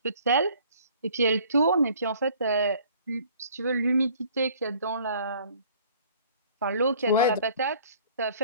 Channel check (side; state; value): both; inverted; correlation -0.54